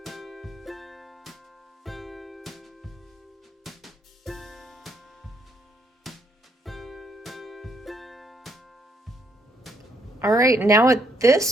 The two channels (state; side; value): normal; both; correlation 0.71